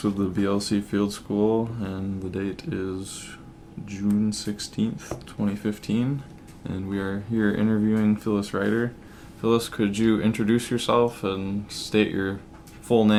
with the BLC Field School, and the date is June 16th, 2015, and we are here interviewing Phyllis Reitter. Phyllis, could you introduce yourself and state your full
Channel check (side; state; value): both; identical; correlation 1.00